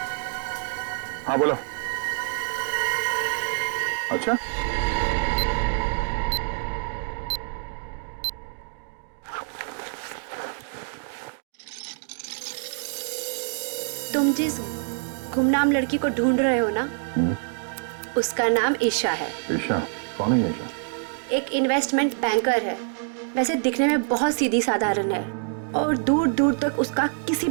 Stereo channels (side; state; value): left; silent; digital silence